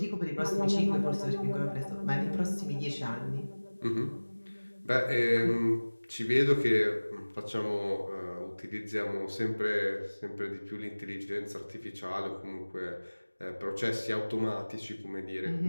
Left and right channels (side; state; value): both; inverted; correlation -1.00